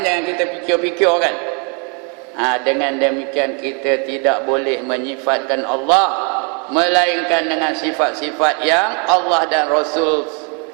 jangan kita fikir-fikir kan. Dengan demikian kita tidak boleh menyifatkan Allah melainkan dengan sifat-sifat yang Allah dan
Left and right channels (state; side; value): quieter; left; 37.1 dB